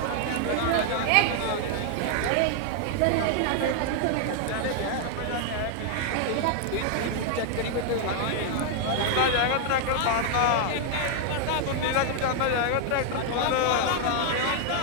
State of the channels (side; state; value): both; different; correlation 0.00